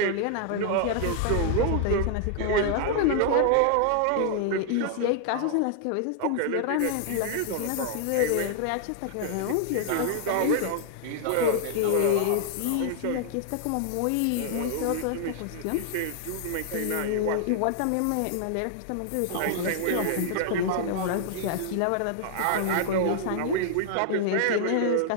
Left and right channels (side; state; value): both; different; correlation -0.01